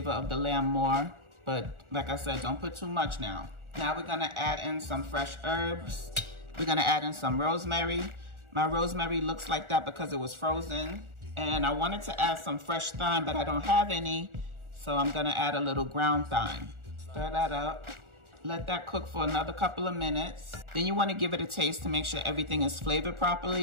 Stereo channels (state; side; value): late; left; 1.4 ms